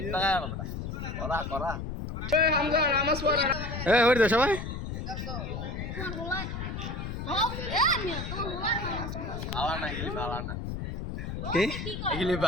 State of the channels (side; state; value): left; noise; rumble, 5 dB below the sound